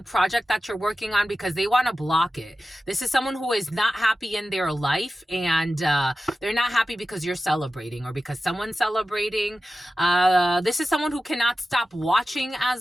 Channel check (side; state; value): both; normal; correlation 0.94